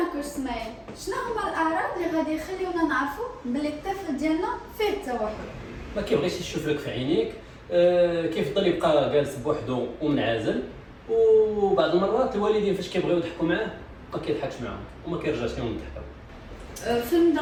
كنت اسماعيل، شنو هما الاعراض اللي غادي يخليونا نعرفوا بلي الطفل ديالنا فيه التوحد؟ ما كيبغيش يشوف لك في عينيك، كيفضل يبقى جالس بوحدو ومنعزل، وبعض المرات الوالدين فاش كيبغيو يضحكوا معاه ما كيضحكش معاهم وما كيرجعش لهم الضحكه. في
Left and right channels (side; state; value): both; identical; correlation 1.00